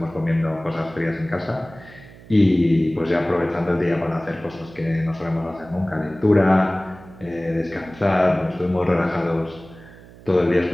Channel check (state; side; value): noise; right; hum, 21 dB below the sound